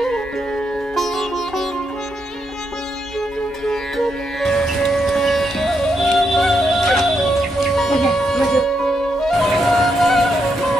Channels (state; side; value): normal; both; correlation 0.81